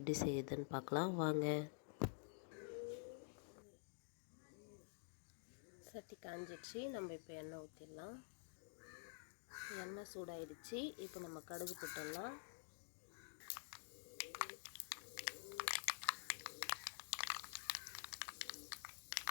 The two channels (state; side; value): silent; right; digital silence